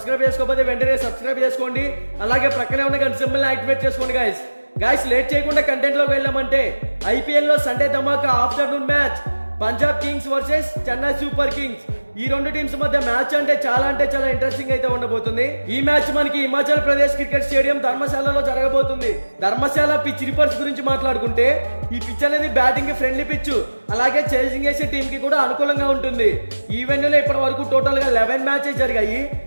చేసుకోకపోతే వెంటనే సబ్స్క్రైబ్ చేసుకోండి. అలాగే ప్రక్కనే ఉన్న గంట సింబల్ యాక్టివేట్ చేసుకోండి. గైస్ లేట్ చేయకుండా కంటెంట్ లోకి వెళ్ళామంటే ఐపీఎల్ లో సండే ధమాకా afternoon match Punjab kings versus Chennai super kings. ఈ రెండు టీమ్స్ మధ్య మ్యాచ్ అంటే చాలా ఇంట్రెస్టింగ్ అయితే ఉండబోతుంది. ఈ మ్యాచ్ మనకి హిమాచల్ ప్రదేశ్ క్రికెట్ స్టేడియం ధర్మశాలలో జరగబోతుంది. ధర్మశాల పిచ్ రిపోర్ట్స్ గురించి మాట్లాడుకుంటే ఈ పిచ్ అనేది బ్యాటింగ్ కి ఫ్రెండ్లీ పిచ్, అలాగే చేసింగ్ చేసే టీం కి కూడా అనుకూలంగా ఉంటుంది. ఈ వెన్యూలో ఇప్పటి వరకు టోటల్ గా 11 మ్యాచెస్ జరిగాయి.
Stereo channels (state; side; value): inverted; both; correlation -1.00